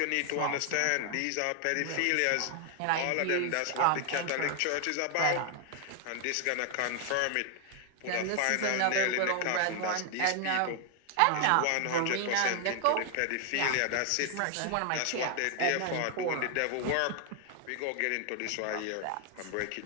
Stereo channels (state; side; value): different; both; correlation 0.00